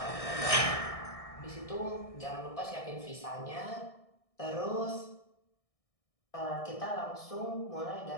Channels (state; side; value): late; right; 1.6 ms